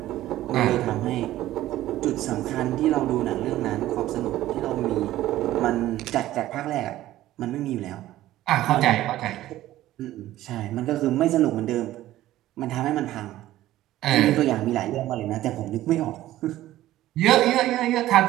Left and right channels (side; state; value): left; quieter; 14.7 dB